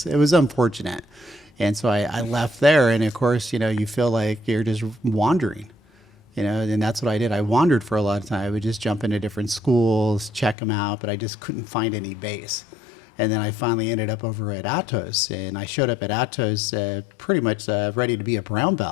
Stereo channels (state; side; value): drops out; right; at 10.6 s